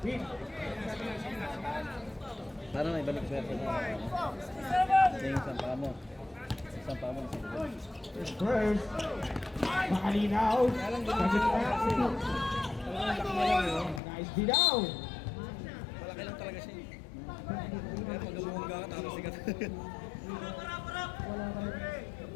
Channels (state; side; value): drops out; right; at 14.0 s